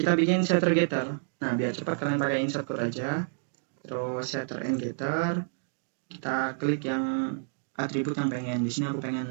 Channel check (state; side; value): silent; left; digital silence